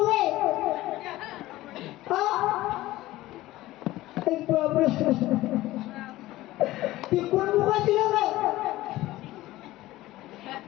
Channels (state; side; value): quieter; right; 16.9 dB